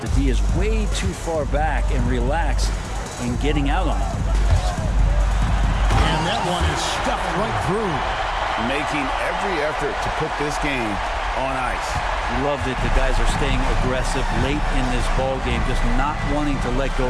The D is way too far back and relaxed in getting out on it. And that one is stuffed right through. Making every effort to put this game on ice. Love that the guys are staying aggressive late in this ball game, just not wanting to let go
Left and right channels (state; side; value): identical; both; correlation 1.00